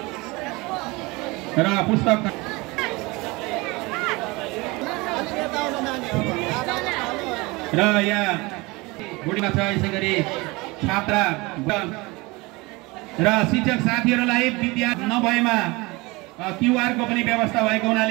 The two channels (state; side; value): quieter; left; 24.0 dB